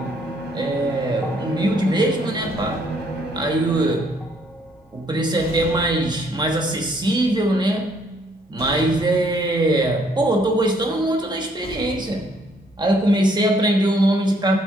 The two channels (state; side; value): normal; both; correlation 0.66